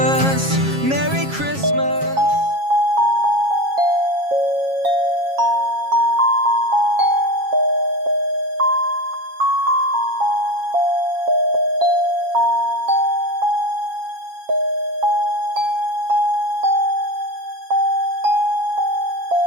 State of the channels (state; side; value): late; left; 7.3 ms